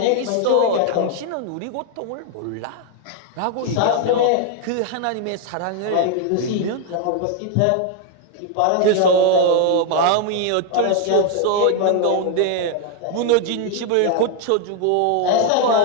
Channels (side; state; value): both; different; correlation 0.00